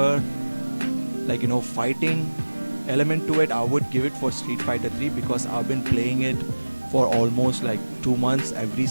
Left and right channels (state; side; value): inverted; both; correlation -1.00